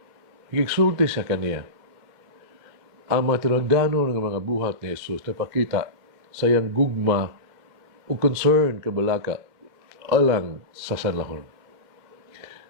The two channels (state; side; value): late; left; 2.1 ms